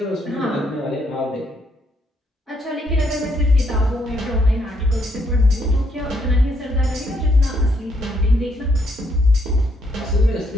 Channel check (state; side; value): normal; both; correlation 0.73